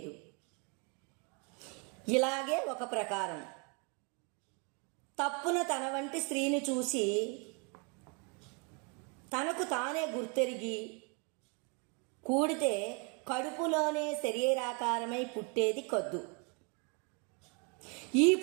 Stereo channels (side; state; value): left; quieter; 34.2 dB